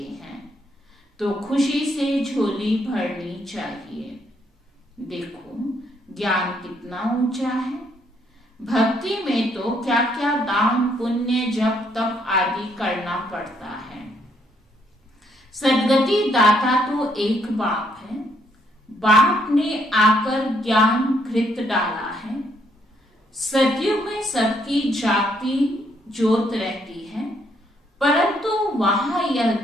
हैं तो खुशी से झोली भरनी चाहिए। देखो ज्ञान कितना ऊंचा है। भक्ति में तो क्या क्या दान, पुण्य, जप, तप आदि करना पड़ता है। सदगति दाता तो एक बाप है। बाप ने आकर ज्ञान घृत डाला है। सदियों में सबकी जागती ज्योत रहती है, परंतु वहां यह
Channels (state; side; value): normal; both; correlation 0.71